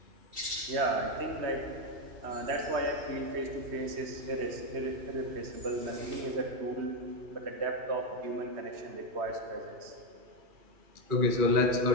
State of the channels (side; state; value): left; late; 3.1 ms